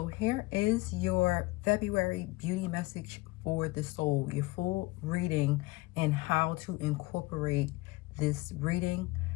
here is your February beauty message for the soul, your full reading and how to incorporate this reading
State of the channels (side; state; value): right; quieter; 21.9 dB